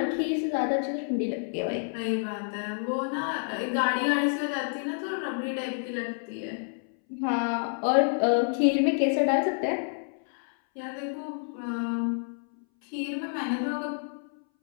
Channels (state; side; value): silent; right; 59 dB below the other